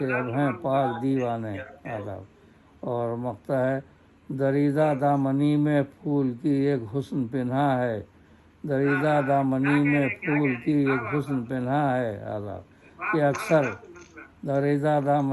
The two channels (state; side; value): identical; both; correlation 1.00